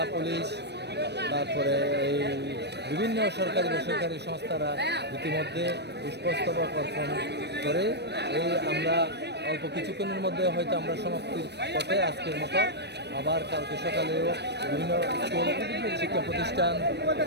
পুলিশ, তারপরে এই বিভিন্ন সরকারি বেসরকারি সংস্থারা ইতিমধ্যে পুষ্পস্তবক অর্পণ করে আমরা অল্প কিছুক্ষণের মধ্যে হয়তো আমরা সমাপ্তির পথে আজকের মতো। আবার কালকে সকালেও বিভিন্ন স্কুল, শিক্ষা প্রতিষ্ঠান,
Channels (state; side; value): late; left; 0.49 ms